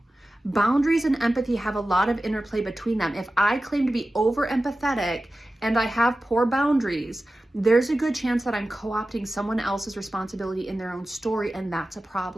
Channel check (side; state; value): both; normal; correlation 0.95